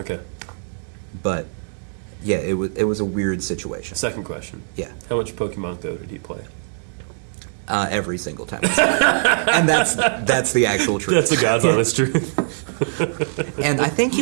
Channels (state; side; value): silent; left; digital silence